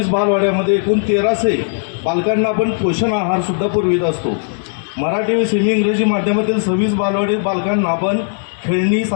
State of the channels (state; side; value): silent; right; 68 dB below the other